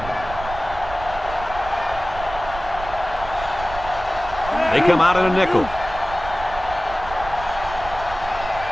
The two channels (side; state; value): right; noise; rumble, 12 dB below the sound